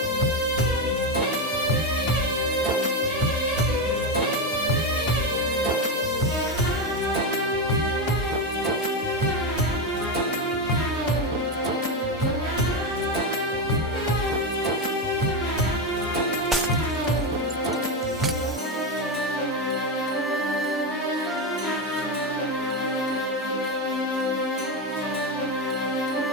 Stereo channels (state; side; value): normal; both; correlation 0.12